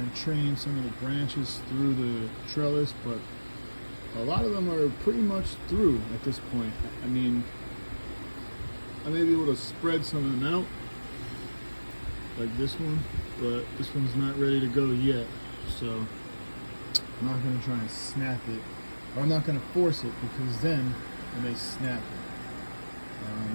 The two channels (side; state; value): both; inverted; correlation -1.00